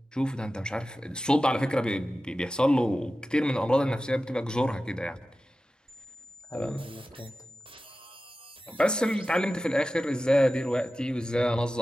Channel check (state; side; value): normal; both; correlation 0.94